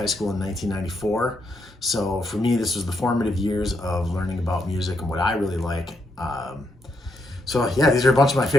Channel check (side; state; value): both; normal; correlation 0.78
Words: school in 1994. So for me, this was the formative years of learning about music and what I really like. So yeah, these are a bunch of my